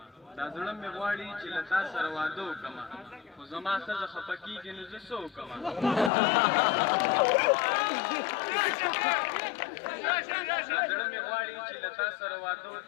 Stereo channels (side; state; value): right; drops out; at 6.1 s